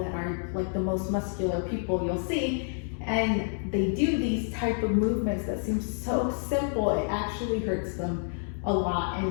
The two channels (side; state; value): right; silent; digital silence